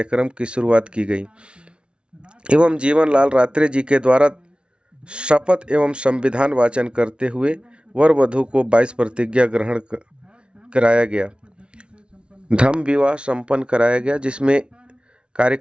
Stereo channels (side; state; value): left; late; 0.057 ms